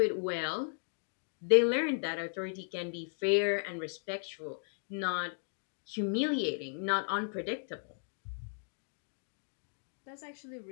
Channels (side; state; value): right; silent; digital silence